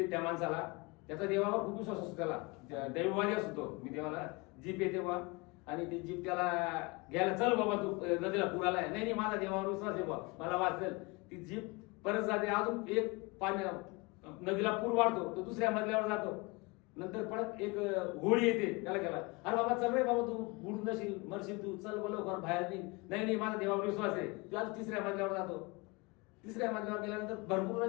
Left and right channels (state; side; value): quieter; right; 26.2 dB